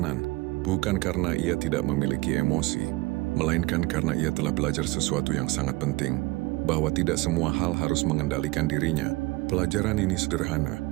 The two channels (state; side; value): quieter; left; 21.9 dB